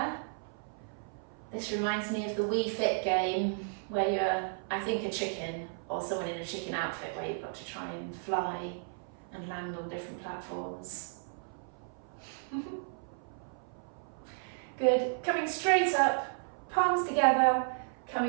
This reminds me of the Wii Fit game where you're, I think, a chicken or someone in a chicken outfit where you've got to try and fly and land on different platforms. Good, coming straight up, palms together,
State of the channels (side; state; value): left; silent; 55 dB below the other